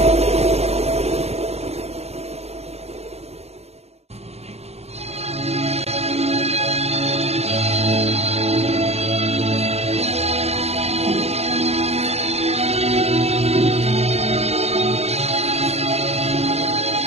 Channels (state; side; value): late; left; 0.30 ms